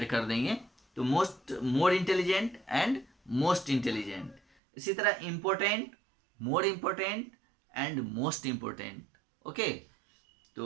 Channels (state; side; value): drops out; left; at 4.4 s